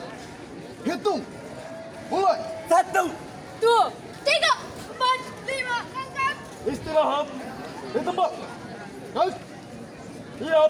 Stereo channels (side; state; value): both; identical; correlation 1.00